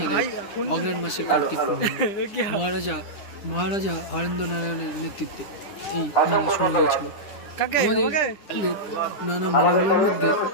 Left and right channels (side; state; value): right; late; 9.9 ms